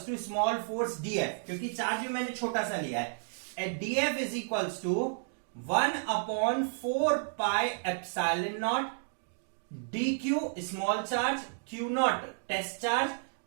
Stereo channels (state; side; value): silent; left; digital silence